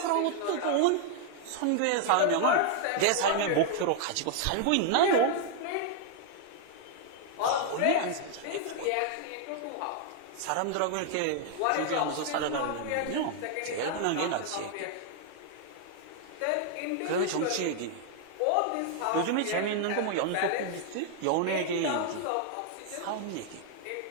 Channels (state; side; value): different; both; correlation 0.00